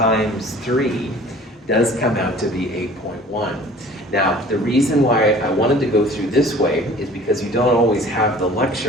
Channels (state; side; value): normal; both; correlation 0.48